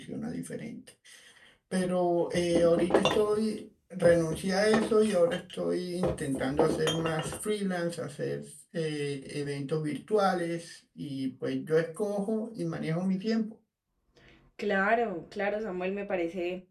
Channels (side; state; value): both; identical; correlation 1.00